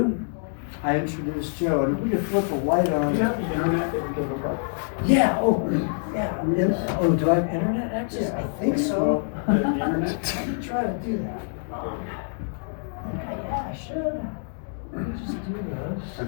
I introduce Joe, and if we could flip the light on. You have the internet that you can look up? Yeah, do I have internet access? I think so. The internet? Let me try to do that. Okay, yeah, I should. Let me just do I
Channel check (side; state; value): right; silent; digital silence